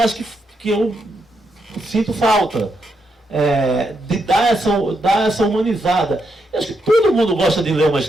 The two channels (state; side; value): normal; both; correlation 0.81